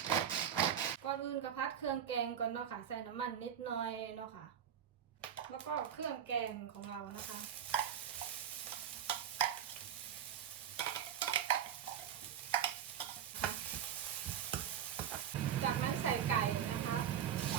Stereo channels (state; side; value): quieter; left; 9.1 dB